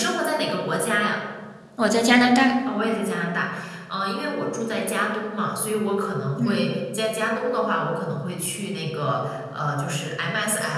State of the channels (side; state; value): both; identical; correlation 1.00